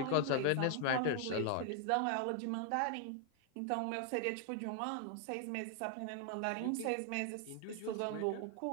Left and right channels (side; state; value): both; different; correlation 0.00